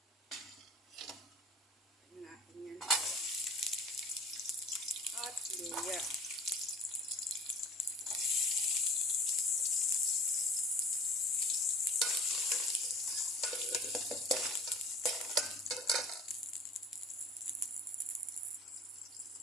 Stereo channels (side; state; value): both; normal; correlation 0.43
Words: Tignan natin yan. At luya.